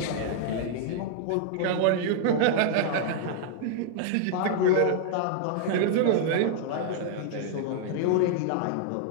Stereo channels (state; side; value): different; both; correlation -0.01